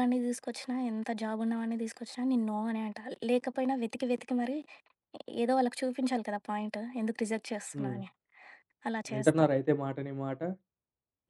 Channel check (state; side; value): identical; both; correlation 1.00